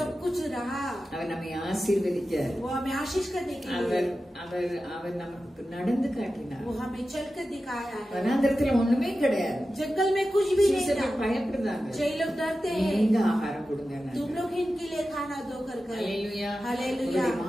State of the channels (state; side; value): normal; both; correlation 0.93